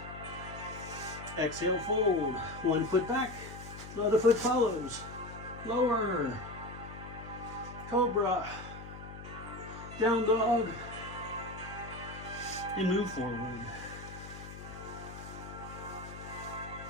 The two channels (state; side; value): noise; left; hum, 12 dB below the sound